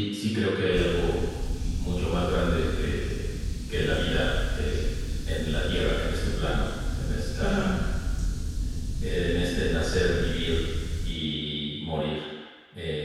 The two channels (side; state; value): both; identical; correlation 1.00